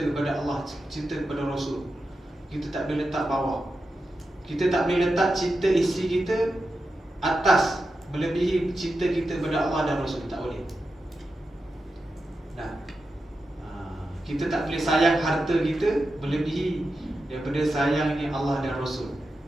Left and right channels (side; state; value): both; normal; correlation 0.90